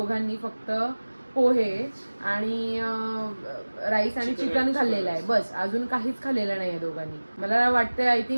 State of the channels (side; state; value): both; inverted; correlation -1.00